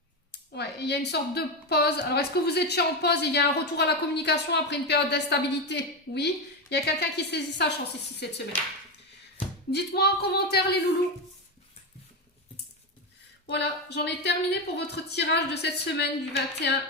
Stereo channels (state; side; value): normal; both; correlation 0.13